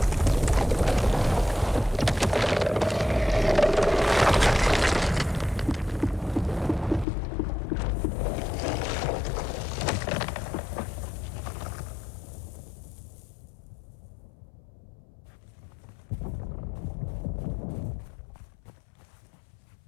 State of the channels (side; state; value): right; drops out; at 7.1 s